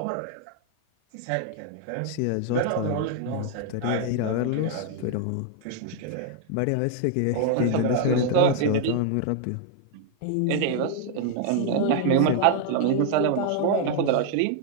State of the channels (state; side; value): different; both; correlation 0.00